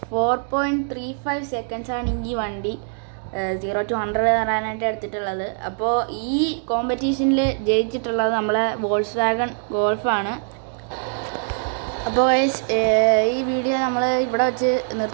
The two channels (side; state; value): left; silent; digital silence